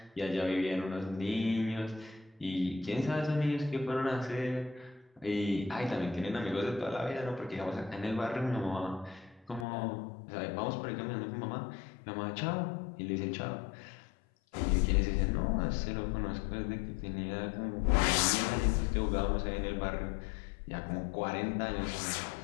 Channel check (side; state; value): right; drops out; at 9.7 s